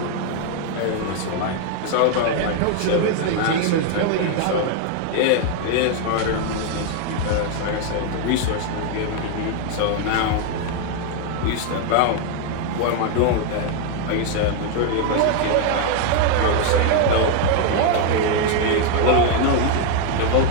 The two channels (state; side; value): different; both; correlation 0.01